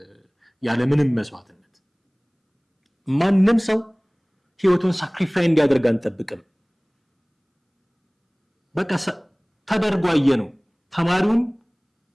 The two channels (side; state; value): both; identical; correlation 1.00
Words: ያለ ምንም መስዋዕትነት ማንም ሰው ህይወቱን ሳክሪፋይ እንዲያደርግ አንጠብቅም። በቃ ተደርጎ አየነው። ተማሪውን